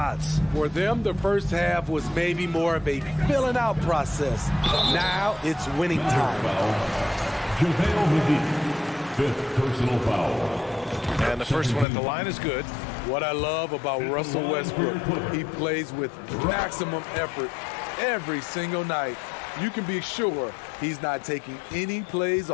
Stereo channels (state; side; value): drops out; right; at 11.9 s